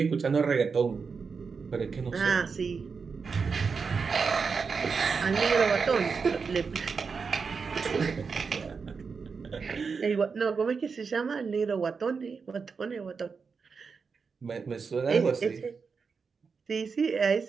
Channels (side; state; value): left; quieter; 5.3 dB